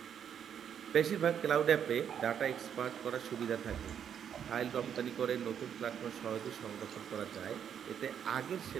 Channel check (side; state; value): left; quieter; 8.5 dB